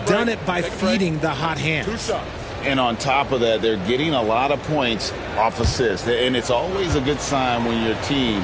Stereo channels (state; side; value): identical; both; correlation 1.00